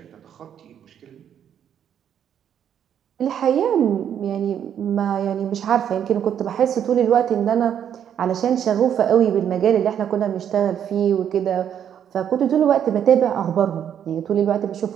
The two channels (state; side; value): quieter; left; 9.2 dB